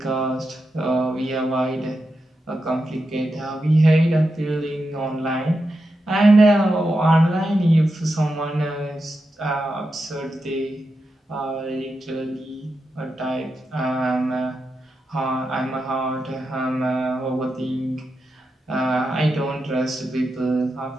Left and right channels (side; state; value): both; normal; correlation 0.88